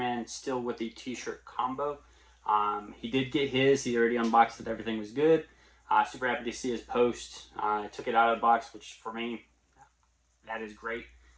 still with the t-shirt combo. He did get his. He already unboxed it. Everything was good. Super happy to see his post. I took it out of the box, which for me, that is great.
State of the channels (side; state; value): both; identical; correlation 1.00